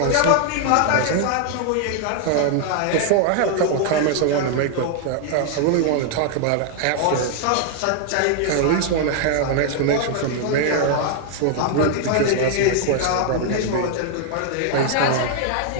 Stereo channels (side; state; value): both; different; correlation 0.00